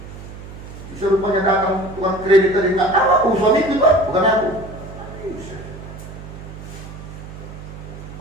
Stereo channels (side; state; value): right; noise; hum, 13 dB below the sound